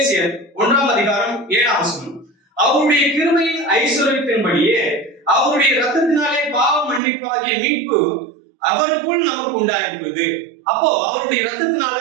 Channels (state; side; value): drops out; left; at 7.0 s